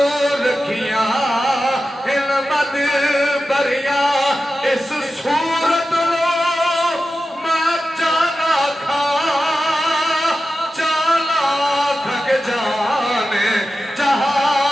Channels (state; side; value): normal; both; correlation 0.92